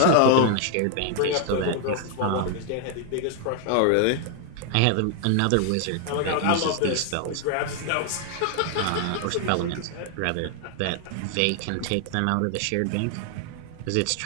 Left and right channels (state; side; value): different; both; correlation 0.00